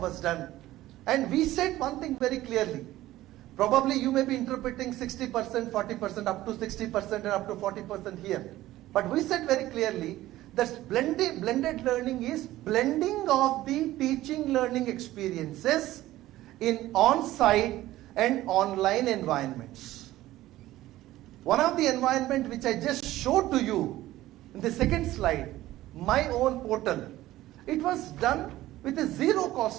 done, and we said one thing very clearly. Probably you may be interpreting 60%, 40%, up to 60% and up to 40% here. But we said very clearly that blended learning is blending of the teaching learning experiences in on-site and online environments. One of the environment which I just showed to you in the second slide, my own portal, it was done with a zero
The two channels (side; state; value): left; quieter; 15.6 dB